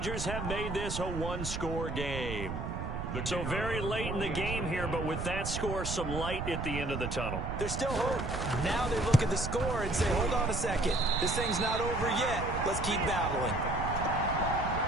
have made this a 1-score game. So very late in the game here, but with that score, some light at the end of the tunnel. There's still hope. Now they look at the score and say, hold on a second. This thing's not over yet. Let's keep battling.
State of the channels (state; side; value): noise; right; rumble, 4 dB below the sound